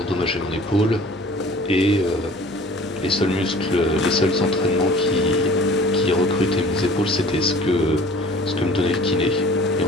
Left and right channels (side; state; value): both; normal; correlation 0.47